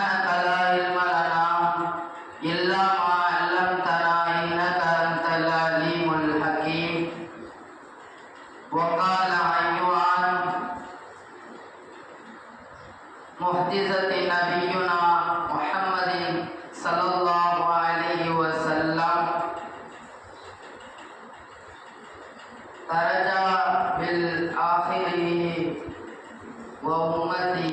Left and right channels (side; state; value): both; identical; correlation 1.00